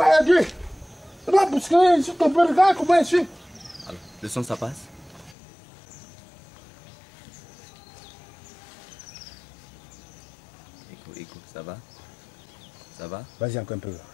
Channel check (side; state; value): right; drops out; at 5.4 s